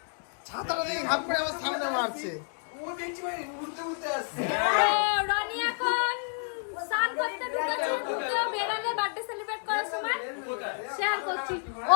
ছাতাটা দিয়ে ঘাপ করে আমার সামনে মারছে। রনি এখন স্নান করতে ঢুকেছে, ঢুকেও বেরোলে বার্থডে সেলিব্রেট করার সময় শেয়ার করছি।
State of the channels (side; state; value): right; silent; 58 dB below the other